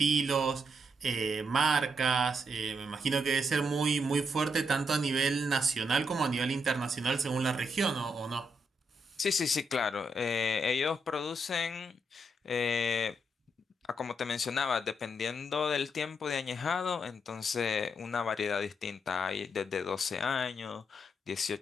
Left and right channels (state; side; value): normal; both; correlation 0.79